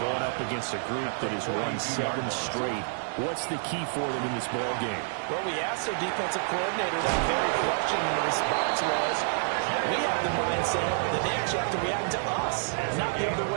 going up against a group that has won 7 straight. What's the key for them in this ball game? Well, we asked their defensive coordinator that very question, and the response was, we have the mindset that they actually have to react to us, not the other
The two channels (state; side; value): silent; left; digital silence